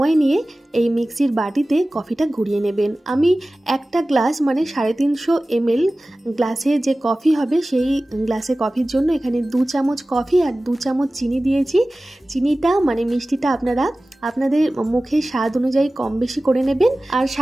নিয়ে এই মিক্সির বাটিতে কফিটা ঘুরিয়ে নেবেন। আমি একটা গ্লাস মানে 350 ml গ্লাসে যে কফি হবে সেই গ্লাসে কফির জন্য এখানে 2 চামচ কফি আর 2 চামচ চিনি দিয়েছি। চিনিটা মানে মিষ্টিটা আপনারা আপনাদের মুখের স্বাদ অনুযায়ী কম বেশি করে নেবেন। আর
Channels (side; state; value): both; normal; correlation 0.97